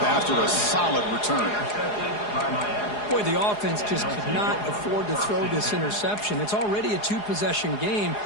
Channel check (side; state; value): right; late; 4.8 ms